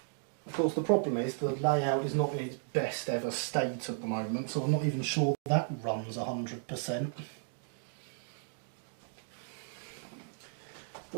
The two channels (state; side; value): silent; left; digital silence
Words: Of course, the problem is the layout is not in its best ever state at the moment, so I'm not even sure that runs 100%.